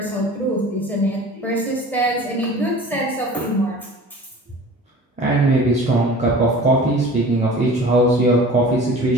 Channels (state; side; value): normal; both; correlation 0.42